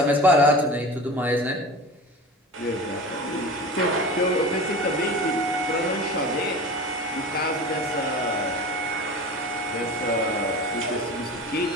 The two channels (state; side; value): normal; both; correlation 0.33